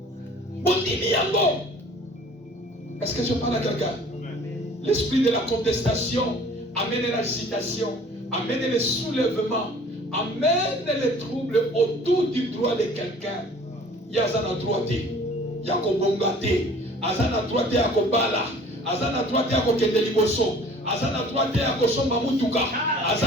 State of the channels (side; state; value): both; normal; correlation 0.50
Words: Bondimi Yango. Est-ce que je parle à quelqu'un? L'esprit de la contestation amène l'agitation, amène le soulèvement, amène les troubles autour du droit de quelqu'un. Yazana droité, Yako Bongate, Azana droité Yako Bala, Azana droité Yako Kendeliboso, Azana droité Yako Somba Mutuka,